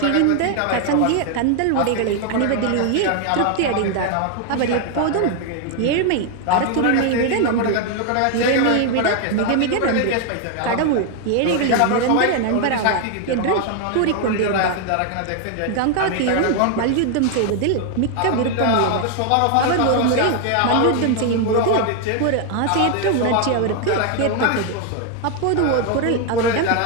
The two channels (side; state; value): both; different; correlation 0.00